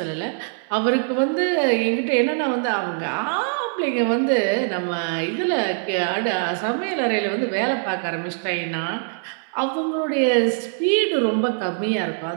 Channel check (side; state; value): left; silent; 64 dB below the other